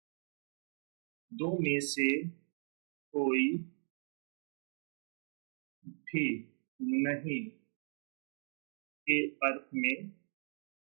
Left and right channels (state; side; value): silent; left; 52 dB below the other